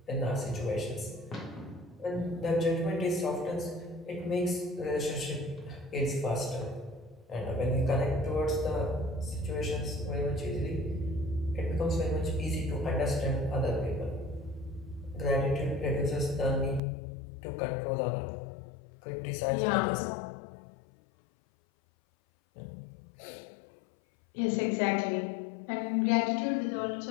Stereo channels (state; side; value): drops out; right; at 16.8 s